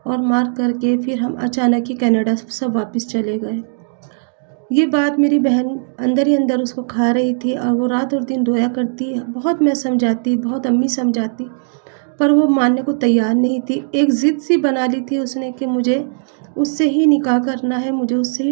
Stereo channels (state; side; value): silent; left; digital silence